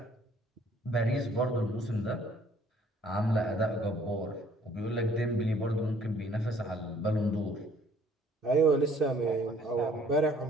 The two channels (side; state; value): both; normal; correlation 0.59